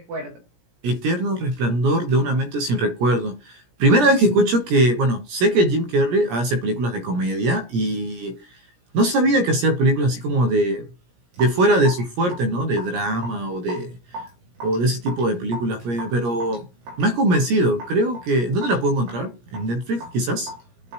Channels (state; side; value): late; left; 17 ms